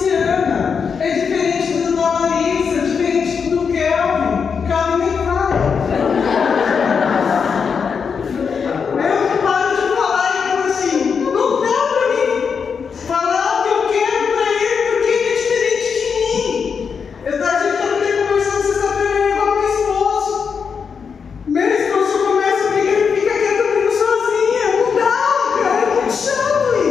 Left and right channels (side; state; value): right; quieter; 6.1 dB